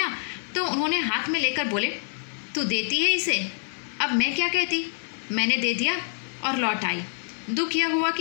तो उन्होंने हाथ में लेकर बोले, तू देती है इसे? अब मैं क्या कहती। मैंने दे दिया और लौट आई। दुख यह हुआ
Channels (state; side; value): silent; right; digital silence